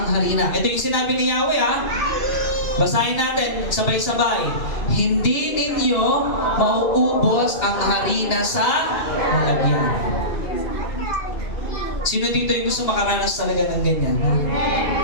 harina. Ito yung sinabi ni Yahweh, ha? Basahin natin, sabay-sabay. Hindi ninyo mauubos ang harina sa lalagyan. Sino dito yung gusto makaranas talaga ng ganyan?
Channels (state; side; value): late; right; 2.8 ms